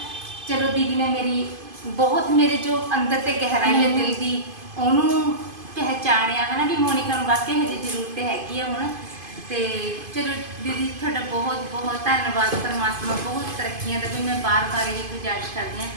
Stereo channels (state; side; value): late; left; 2.5 ms